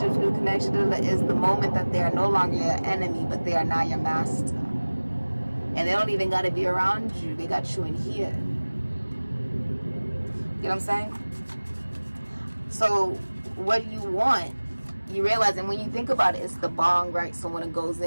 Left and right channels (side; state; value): both; inverted; correlation -1.00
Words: new connections. Is the moment that they are no longer your enemy, but they are now your master. And they don't even got to be around you. They got you in here. You know what I'm saying? So what you want, you realize, and when you think about it, it's the bong, right? So when it goes